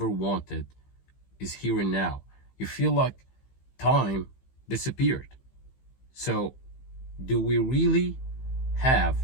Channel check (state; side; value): late; right; 15 ms